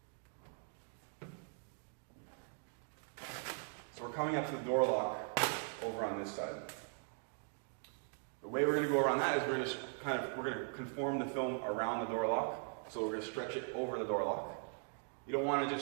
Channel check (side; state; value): left; silent; 51 dB below the other